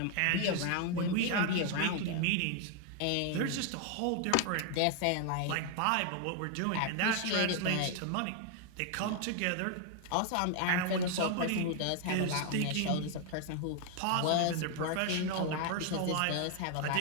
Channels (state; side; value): different; both; correlation 0.00